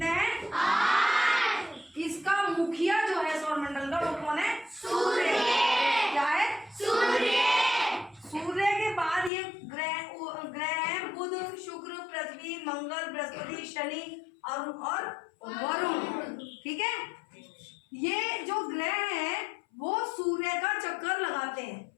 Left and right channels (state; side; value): drops out; right; at 9.3 s